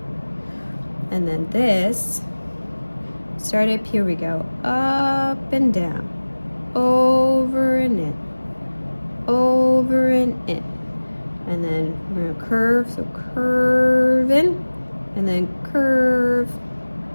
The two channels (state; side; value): inverted; both; correlation -1.00